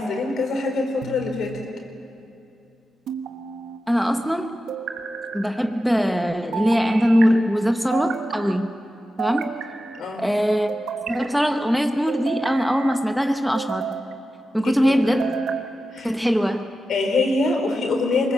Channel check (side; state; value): both; normal; correlation 0.91